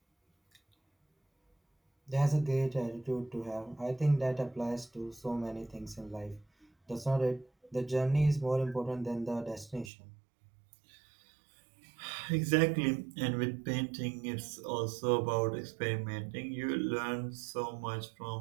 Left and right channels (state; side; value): drops out; left; at 9.9 s